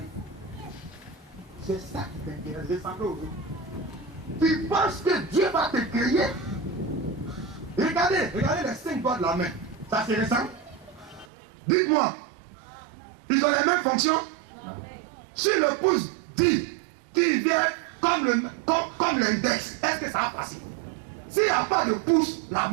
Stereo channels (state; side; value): drops out; left; at 11.2 s